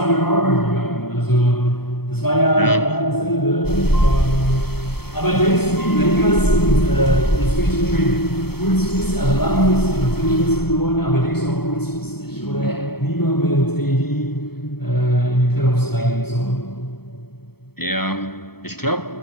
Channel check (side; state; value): right; late; 0.96 ms